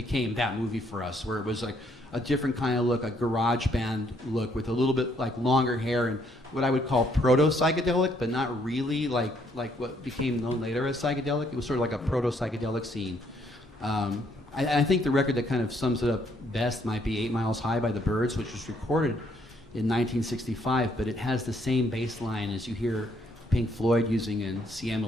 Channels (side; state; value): both; normal; correlation 0.70